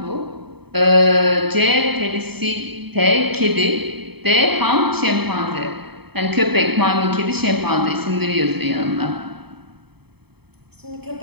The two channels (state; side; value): late; left; 0.97 ms